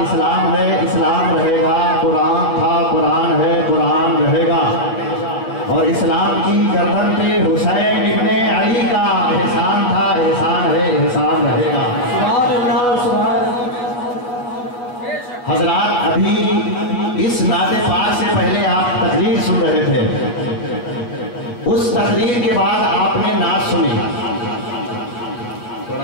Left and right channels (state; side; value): late; right; 8.2 ms